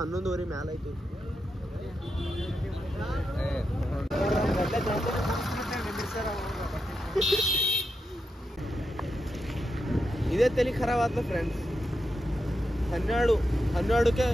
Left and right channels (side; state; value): both; normal; correlation 0.86